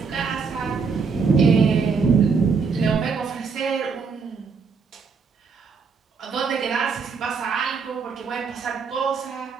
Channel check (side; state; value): left; quieter; 5.3 dB